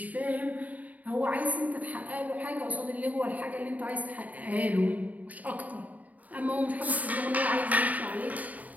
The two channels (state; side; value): late; left; 0.074 ms